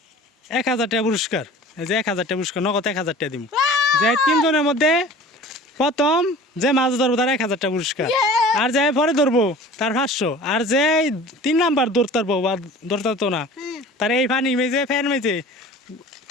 1000 টাকা পুরস্কার। এই যে 1000 টাকা পুরস্কার, নগদ 1000 টাকা দিব। যে তিনজনের মধ্যে প্রথম যে মাছ ধরবো তার 1000 টাকা পুরস্কার, আর যে পরে ধরবো তার 500, আর যে 3 নাম্বার ধরতে পারবো বা ধরতে পারতো না তার এই পানি মেজে ফ্যান মেজে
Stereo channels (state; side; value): normal; both; correlation 0.43